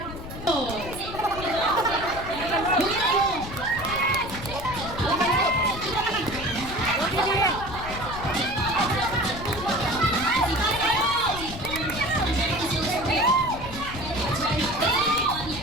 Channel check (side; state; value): left; noise; rumble, 11 dB below the sound